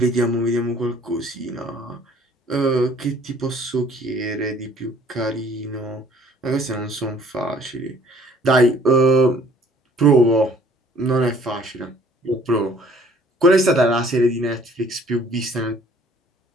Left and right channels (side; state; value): both; normal; correlation 0.57